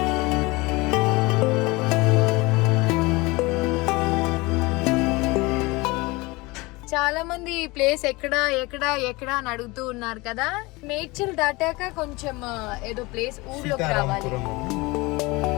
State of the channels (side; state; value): right; quieter; 23.6 dB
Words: చాలా మంది ఈ ప్లేస్ ఎక్కడ ఎక్కడ ఎక్కడ అని అడుగుతూ ఉన్నారు కదా. నేచర్ దాటాక కొంచెం ఏదో ప్లేస్ ఊర్లోకి రావాలి.